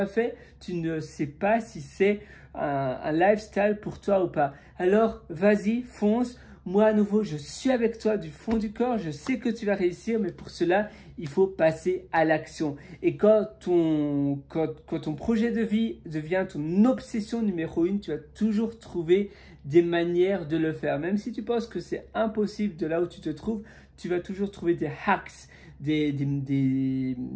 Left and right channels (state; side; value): identical; both; correlation 1.00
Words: fait, tu ne sais pas si c'est un lifestyle pour toi ou pas. Alors, vas-y, fonce. Moi, à nouveau, je suis avec toi du fond du corps. Je sais que tu vas réussir, mais pour cela, il faut passer à l'action. Et quand ton projet de vie devient ton obsession numéro 1, tu vas toujours trouver des manières de le faire. Même si tu penses que c'est impossible de là où tu te trouves, tu vas toujours trouver des hacks, des